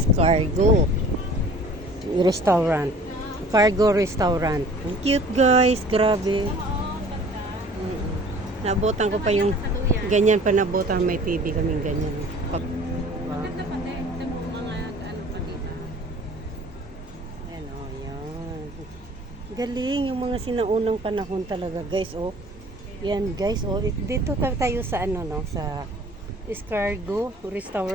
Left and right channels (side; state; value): both; normal; correlation 0.49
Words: Restaurant. Cargo Restaurant. Ang cute guys, grabe. Nabotan ko pa yung ganyan pa nabotan, may TV kaming ganyan. Maganda pa din. Ito mo mga ano pa dito. Ayan o, yan. Galing yung mga sinaunang panahon talaga guys, oh. Yan guys, oh. Dito tayo sa ano no, sa Escargo